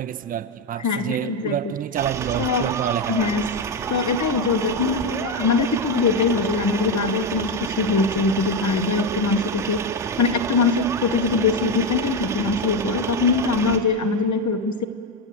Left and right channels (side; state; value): both; normal; correlation 0.10